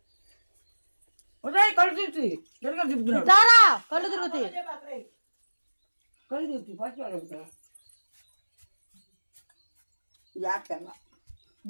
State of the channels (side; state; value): both; inverted; correlation -1.00